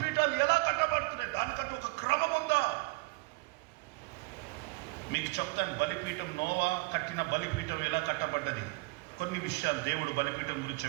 ఎలా కట్టబడుతున్నాయి? దానికంటే ఒక క్రమం ఉందా? మీకు చెప్తాను. బలిపీఠం, నోవా కట్టిన బలిపీఠం ఎలా కట్టబడ్డది, కొన్ని విషయాలు దేవుడు బలిపీఠం గురించి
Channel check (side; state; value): left; quieter; 25.8 dB